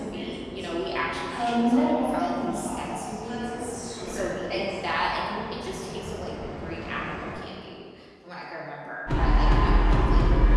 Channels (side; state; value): both; identical; correlation 1.00